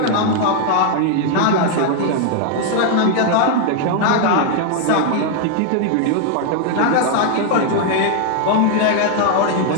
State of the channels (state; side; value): different; both; correlation 0.00